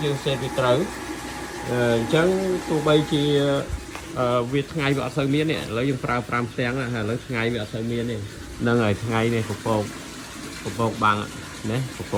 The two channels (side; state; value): both; identical; correlation 1.00